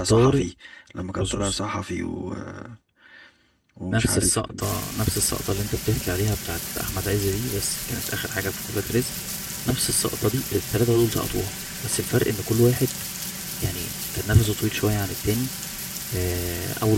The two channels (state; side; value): identical; both; correlation 1.00